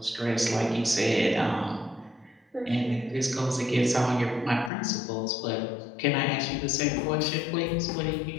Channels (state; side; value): drops out; right; at 4.7 s